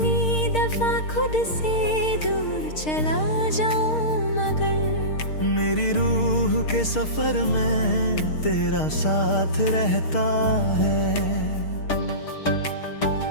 दफा खुद से दूर चला जाऊं मगर मेरी रूह के सफर में तेरा साथ रहता है।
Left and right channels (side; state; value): right; late; 6.5 ms